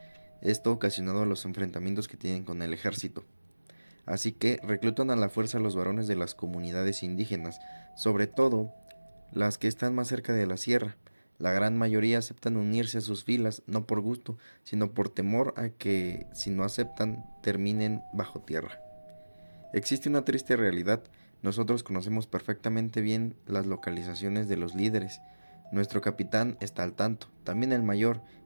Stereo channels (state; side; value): inverted; both; correlation -1.00